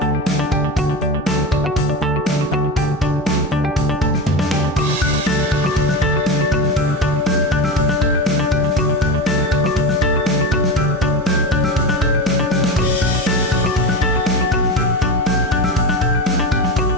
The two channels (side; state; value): both; normal; correlation 0.23